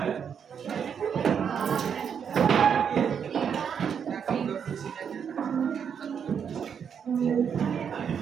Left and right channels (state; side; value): quieter; left; 7.4 dB